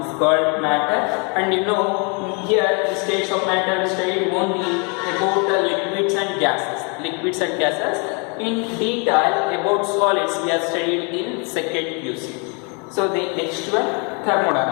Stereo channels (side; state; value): right; quieter; 34.7 dB